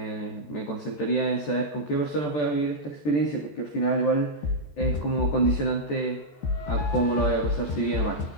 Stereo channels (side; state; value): right; late; 14 ms